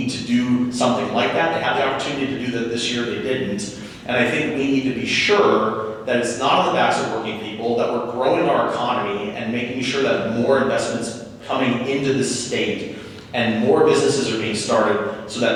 to do something like that. They had the opportunity to do that this year, they didn't. And I think we need to be sure that it's not on the backs of working people, that we're growing our economy and making sure that more investments coming into the state and more businesses are being started so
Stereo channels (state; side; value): identical; both; correlation 1.00